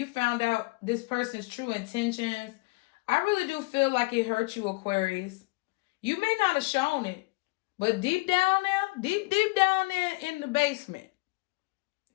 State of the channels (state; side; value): quieter; right; 26.4 dB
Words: found out this person's true intentions, I really do feel like it hurt you, Aquarius. You may not have shown it, but deep down there, deep down there in the basement.